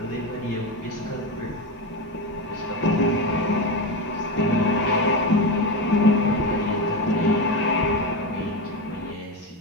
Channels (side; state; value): both; normal; correlation 0.17